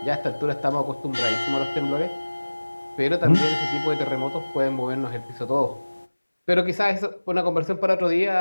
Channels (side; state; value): both; inverted; correlation -1.00